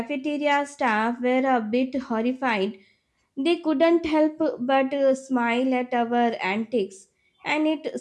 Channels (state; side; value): identical; both; correlation 1.00